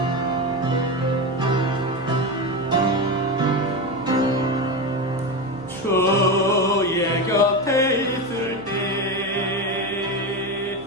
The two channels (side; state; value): left; noise; hum, 23 dB below the sound